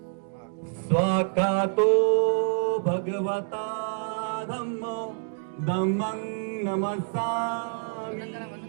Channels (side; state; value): left; silent; 60 dB below the other